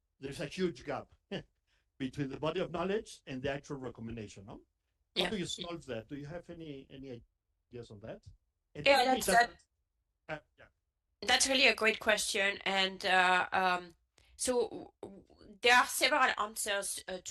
There's a huge gap between the body of knowledge and the actual recommendation. No? How do you solve that? Do you have any ideas on that? And that's really a great question. And so there are several answers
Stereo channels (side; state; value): both; identical; correlation 1.00